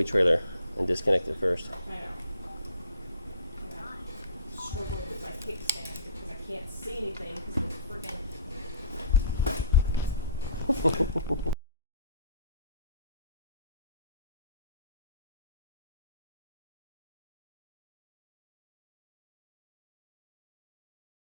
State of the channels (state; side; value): inverted; both; correlation -0.49